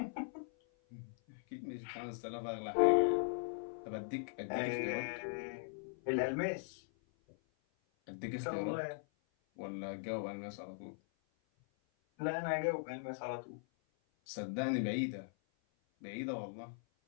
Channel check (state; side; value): silent; right; 51 dB below the other